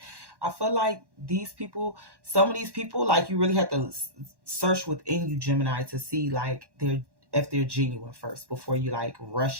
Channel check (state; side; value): late; left; 1.1 ms